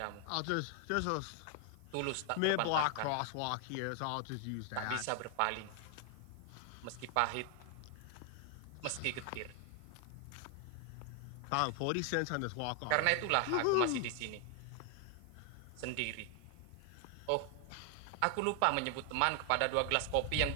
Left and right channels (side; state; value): both; different; correlation 0.00